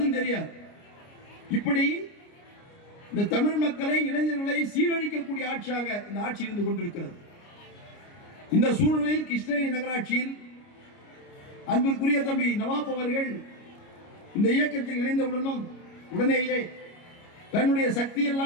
தெரியாது. இப்படி இந்த தமிழ் மக்களை இளைஞர்களை சீரழிக்கக்கூடிய ஆட்சியாக இந்த ஆட்சி இருந்து கொண்டிருக்கிறது. இந்த சூழ்நிலையில் கிருஷ்ணகிரி நகராட்சியில் அன்பிற்குரிய தம்பி நவாப் அவர்கள் இந்த இயக்கத்தில் இணைந்தவுடனும் உடனேயே தன்னுடைய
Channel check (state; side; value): late; right; 29 ms